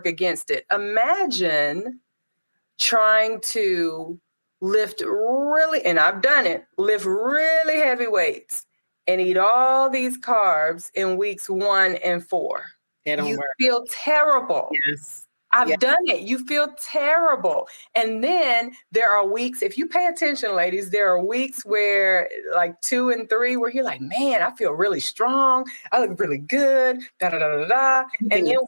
against it. Imagine trying to lift really, and I've done it, lift really heavy weights and eat all these carbs in weeks 1 and 4. They don't You work. feel terrible. Yes. Yeah. I've done it. You feel terrible. And then there are weeks, if you pay attention, ladies, there are weeks where like 2 and 3, where you're like, man, I feel really strong. I look really good. Da da da da da. And Everything then is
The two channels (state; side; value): inverted; both; correlation -1.00